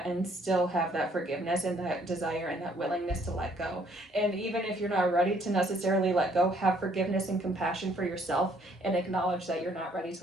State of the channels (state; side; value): normal; both; correlation 0.64